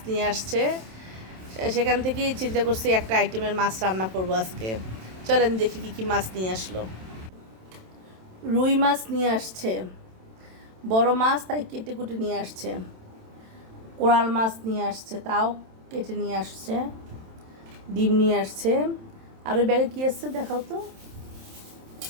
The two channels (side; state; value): left; late; 27 ms